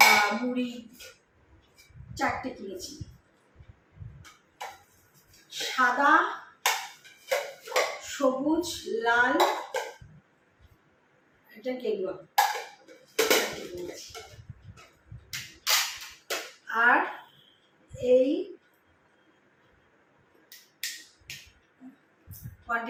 মুড়ি 4টে কিনেছি, সাদা, সবুজ, লাল, এটা গেরুয়া। আর এই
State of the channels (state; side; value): identical; both; correlation 1.00